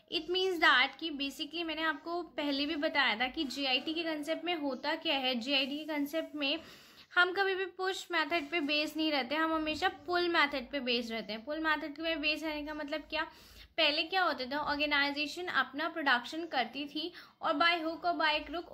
It means that कि basically मैंने आपको पहले भी बताया था कि GIT के concept में होता क्या है। जीआईटी के कंसेप्ट में हम कभी भी पुश मेथड पे बेस नहीं रहते, हम हमेशा पुल मेथड पे बेस रहते हैं। पुल मेथड पे बेस रहने का मतलब क्या, पहले क्या होता था, ऑर्गेनाइजेशन अपना प्रोडक्शन करती थी और बाय हुक और बाय क्रुक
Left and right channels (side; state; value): both; identical; correlation 1.00